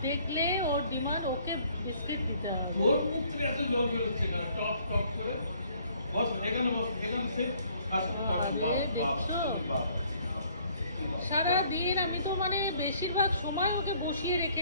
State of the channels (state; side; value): inverted; both; correlation -0.61